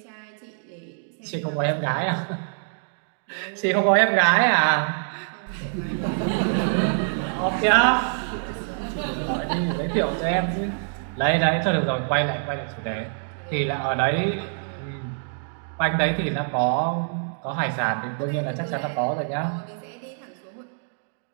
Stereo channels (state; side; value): silent; left; digital silence